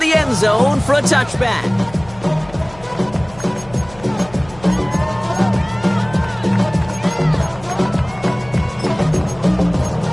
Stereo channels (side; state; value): left; noise; hum, 20 dB below the sound